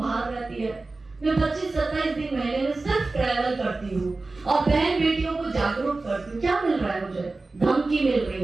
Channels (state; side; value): quieter; left; 3.4 dB